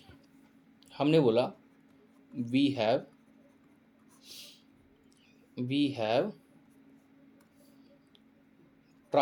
हमने बोला we have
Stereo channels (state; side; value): identical; both; correlation 1.00